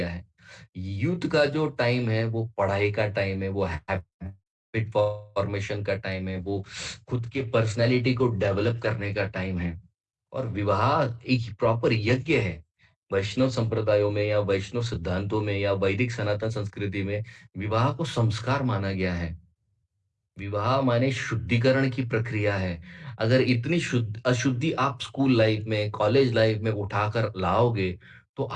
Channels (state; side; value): identical; both; correlation 1.00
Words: है। यूथ का जो टाइम है वो पढ़ाई का टाइम है, वो हैबिट फॉर्मेशन का टाइम है, वो खुद के पर्सनैलिटी को डेवलप करने का टाइम है। और विवाह एक प्रॉपर यज्ञ है। वैष्णव संप्रदायों में या वैष्णव सिद्धांतों में या वैदिक सनातन संस्कृति में विवाह को संस्कार माना गया है। विवाह माने शुद्धिकरण की प्रक्रिया है। अगर इतनी शुद्ध अशुद्धि आप स्कूल लाइफ में, कॉलेज लाइफ में उठाकर लाओगे, तो